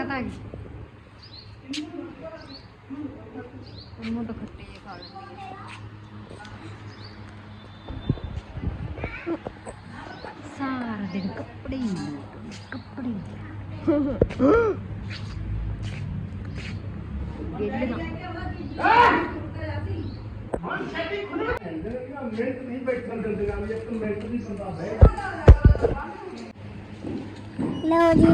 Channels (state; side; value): identical; both; correlation 1.00